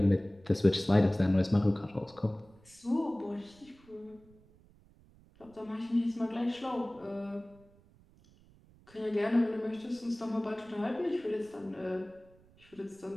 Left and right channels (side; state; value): right; noise; rumble, 27 dB below the sound